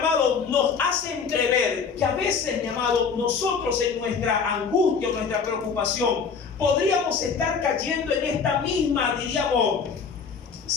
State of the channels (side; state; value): right; quieter; 5.8 dB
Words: nos hace entrever que a veces, mi amado, nosotros en nuestra angustia, en nuestra preocupación, podríamos estar cayendo en esta misma, diríamos,